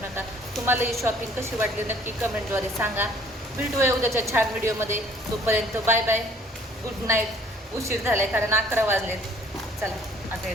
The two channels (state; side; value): normal; both; correlation 0.57